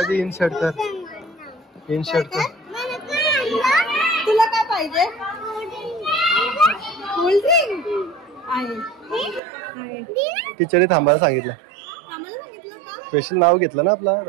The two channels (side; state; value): left; drops out; at 9.4 s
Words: इनशर्ट कर. तुला काय पाहिजे? कोल्ड्रिंक आहे. टीचरने थांबायला सांगितलं. आम्हाला सांगितलं का? स्पेशल नाव घेतलं ना आपला